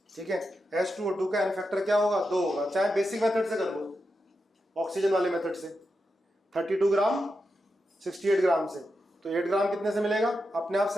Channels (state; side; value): normal; both; correlation 0.88